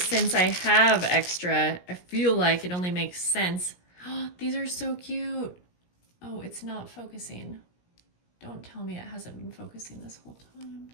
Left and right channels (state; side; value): late; right; 17 ms